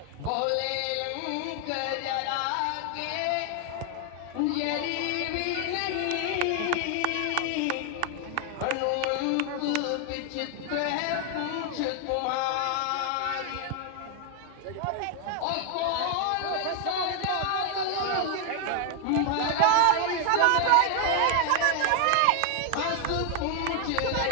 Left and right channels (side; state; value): both; different; correlation 0.00